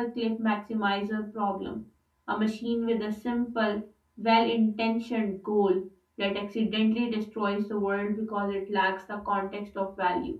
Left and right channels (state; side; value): identical; both; correlation 1.00